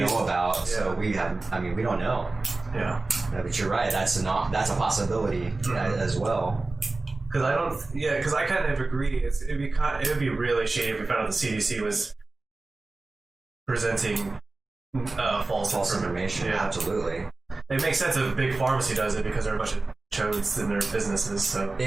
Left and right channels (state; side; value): quieter; left; 3.3 dB